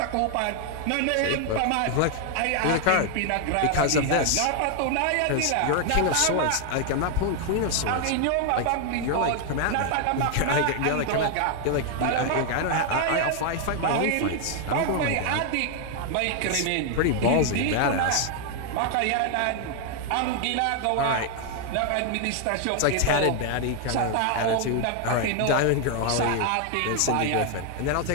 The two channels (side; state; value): both; different; correlation 0.00